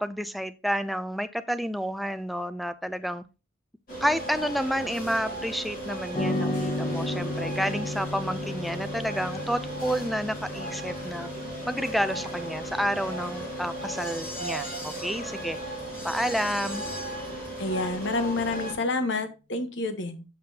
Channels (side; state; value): both; normal; correlation 0.68